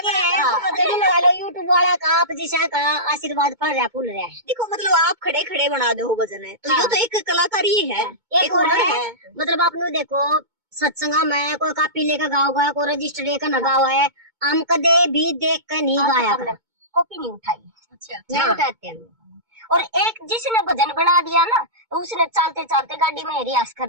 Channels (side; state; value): left; late; 2.2 ms